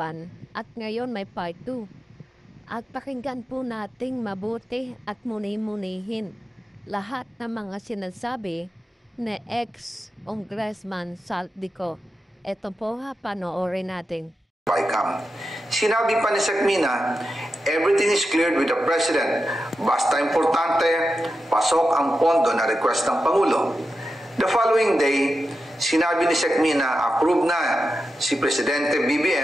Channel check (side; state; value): both; normal; correlation 0.90